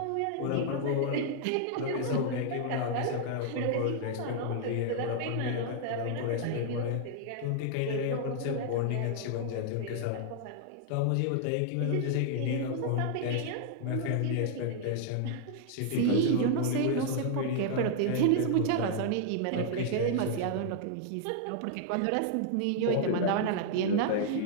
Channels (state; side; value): different; both; correlation -0.01